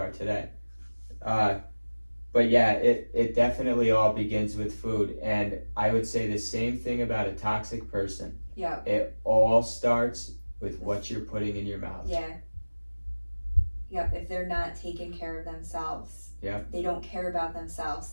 today. But yeah, it definitely all begins with food. And I would say the same thing about a toxic person. Yeah. It all starts with what you're putting in your mouth. Yeah. Yep. If they're not taking care of themselves, they don't care about themselves,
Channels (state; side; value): inverted; both; correlation -1.00